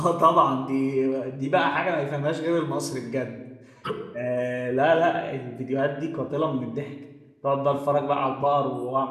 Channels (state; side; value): identical; both; correlation 1.00